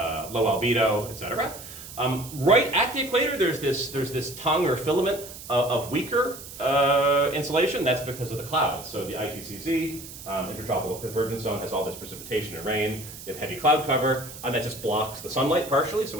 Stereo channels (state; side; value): noise; right; hiss, 14 dB below the sound